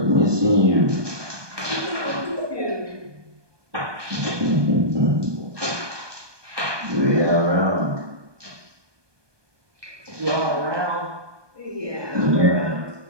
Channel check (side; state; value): left; late; 1.2 ms